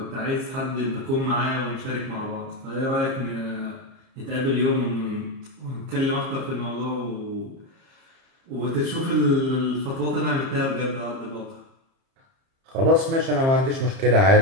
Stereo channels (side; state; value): left; late; 30 ms